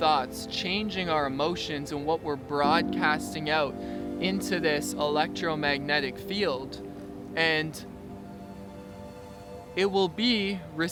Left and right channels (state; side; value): identical; both; correlation 1.00